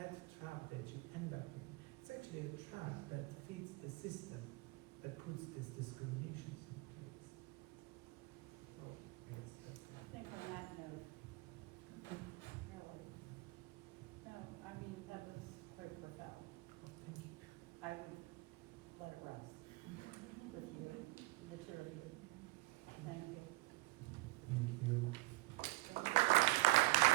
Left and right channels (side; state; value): left; quieter; 21.5 dB